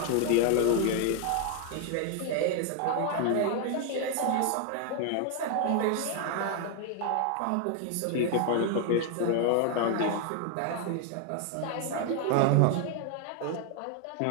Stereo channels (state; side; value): different; both; correlation 0.00